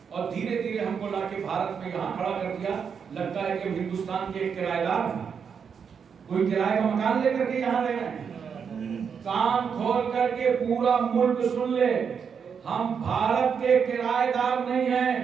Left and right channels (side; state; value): left; quieter; 6.7 dB